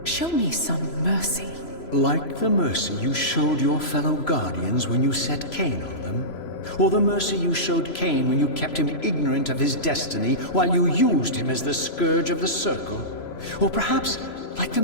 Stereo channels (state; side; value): late; right; 3.0 ms